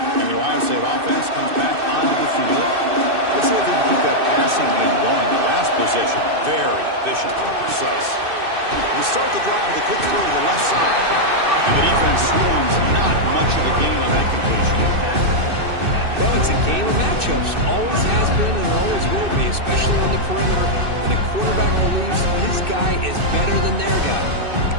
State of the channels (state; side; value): late; left; 2.6 ms